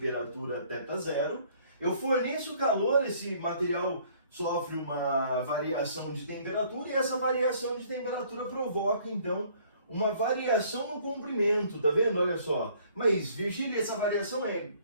θ0. Eu forneço calor, esse material sofre uma variação de temperatura e essa variação de temperatura provoca então uma variação no comprimento, tá vendo? Olha só. Mas Virgílio, essa variação é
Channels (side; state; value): both; inverted; correlation -0.59